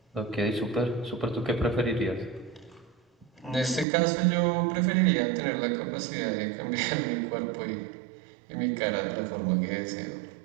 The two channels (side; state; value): left; drops out; at 3.9 s